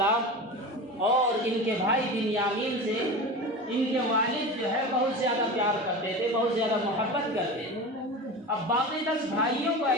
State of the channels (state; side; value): normal; both; correlation 0.29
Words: اور ان کے بھائی بنیامین سے ان کے والد جو ہے بہت زیادہ پیار کرتے تھے، بہت زیادہ محبت کرتے تھے۔ اب باقی 10 بھائیوں کو